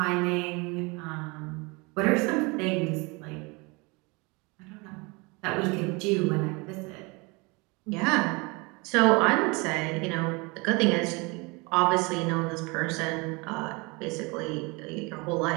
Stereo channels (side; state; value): left; quieter; 27.6 dB